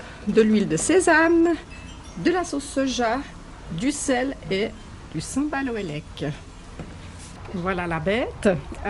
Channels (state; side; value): identical; both; correlation 1.00